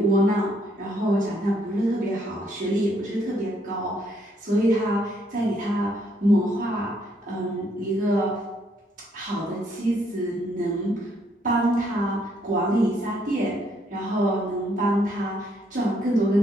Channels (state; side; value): normal; both; correlation 0.70